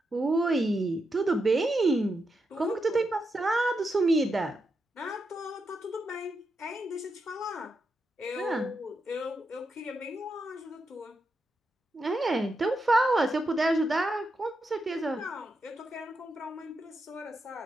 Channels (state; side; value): normal; both; correlation 0.85